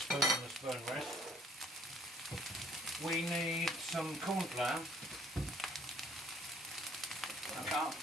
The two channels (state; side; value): normal; both; correlation 0.60